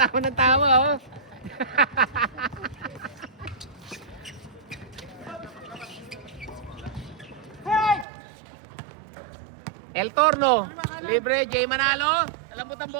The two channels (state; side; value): drops out; left; at 8.1 s